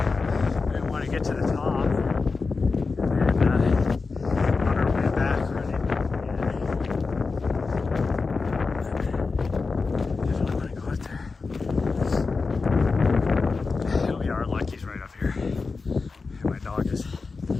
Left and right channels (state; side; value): quieter; right; 4.3 dB